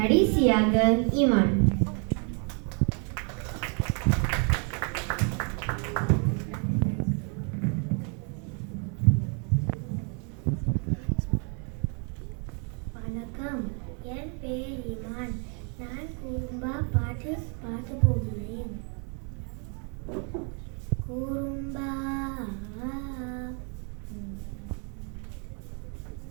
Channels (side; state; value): left; quieter; 39.2 dB